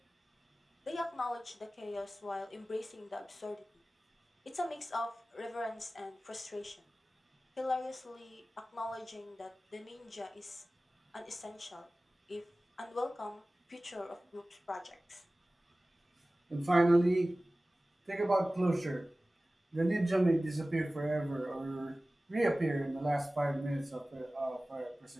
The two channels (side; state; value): both; normal; correlation 0.97